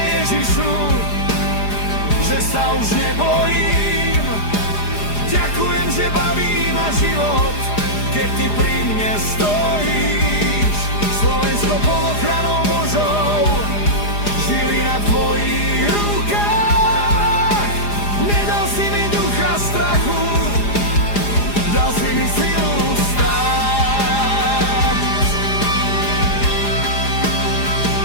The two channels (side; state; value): right; late; 4.9 ms